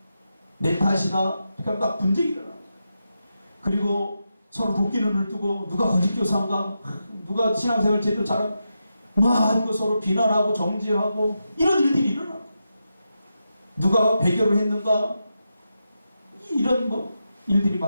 내 탓이다. 그러니까 막 분쟁이 일어나는 거예요. 그리고 서로 도끼눈을 뜨고 누가 거짓 교사인가, 누가 신앙생활 제대로 잘하고 막 이거 서로 비난하고 정죄하고 이런 일들이 일어나. 누가 배교를 했는가, 이런 뭐 일들이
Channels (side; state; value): both; inverted; correlation -0.87